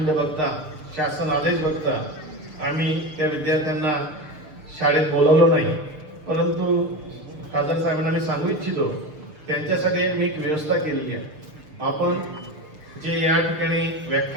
बघता, शासन आदेश बघता आम्ही त्या विद्यार्थ्यांना शाळेत बोलवलं नाही परंतु खासदार साहेबांना मी सांगू इच्छितो, त्यांच्यासाठी मी एक व्यवस्था केलेली आहे. आपण जे या ठिकाणी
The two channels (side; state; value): left; late; 6.6 ms